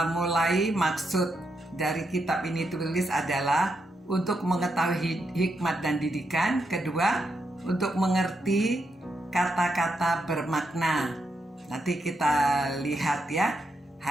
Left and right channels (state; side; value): normal; both; correlation 0.82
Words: mulai, maksud dari kitab ini tulis adalah untuk mengetahui hikmat dan didikan. Kedua, untuk mengerti kata-kata bermakna. Nanti kita lihat ya.